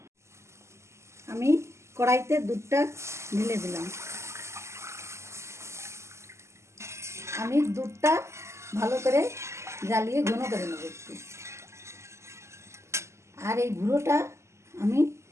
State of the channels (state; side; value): late; left; 0.13 ms